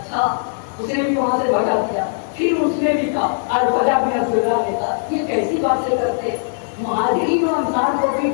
اس نے بھی وہاں سے بھگا دیا. پھر اس نے بھی کہا، الفجا بن عبداللہ نے کہا یہ کیسی باتیں کرتے، مہاجرین و انصار کو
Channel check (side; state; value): right; silent; digital silence